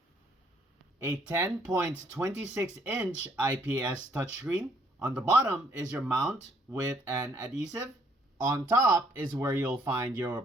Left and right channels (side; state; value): both; normal; correlation 0.66